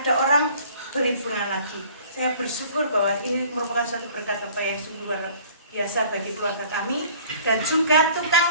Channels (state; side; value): inverted; both; correlation -0.51